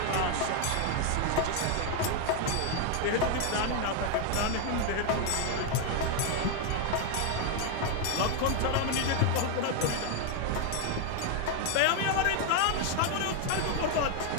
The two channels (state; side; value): different; both; correlation 0.01